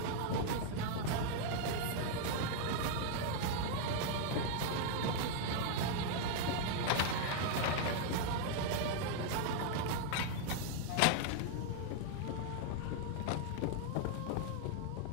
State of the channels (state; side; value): different; both; correlation 0.00